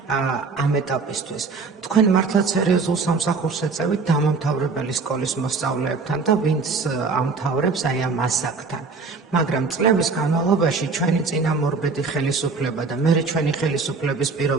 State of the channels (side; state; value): left; quieter; 4.4 dB